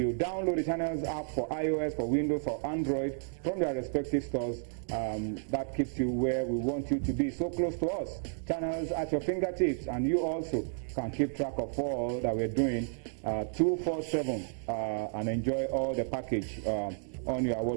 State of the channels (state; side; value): silent; left; digital silence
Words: download the Channels app for iOS, for Windows, for Android from their respective stores, that keeps you where we want you to be, so close to us. Channels at your fingertips, and you also can keep track of all that we're doing 247 and enjoy all the package on your